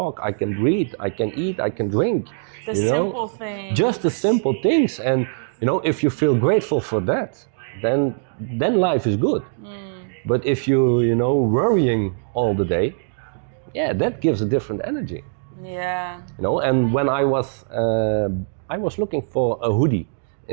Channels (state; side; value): silent; left; digital silence